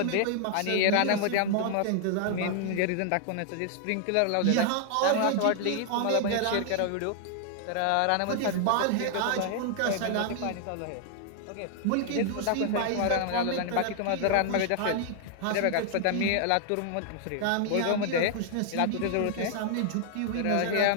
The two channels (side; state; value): both; different; correlation 0.00